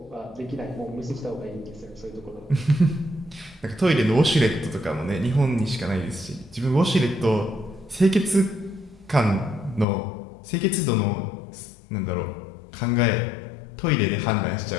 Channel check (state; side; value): drops out; right; at 9.9 s